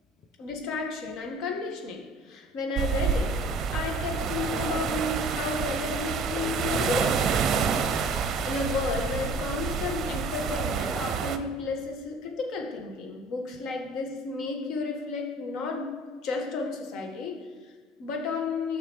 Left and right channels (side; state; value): both; normal; correlation 0.48